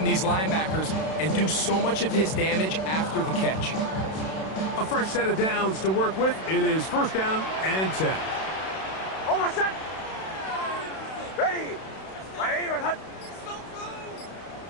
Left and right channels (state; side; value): late; right; 32 ms